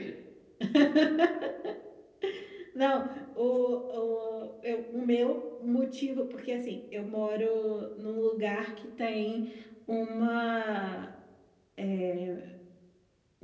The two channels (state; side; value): identical; both; correlation 1.00